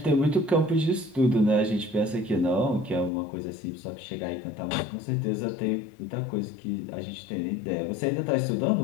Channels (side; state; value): right; drops out; at 3.1 s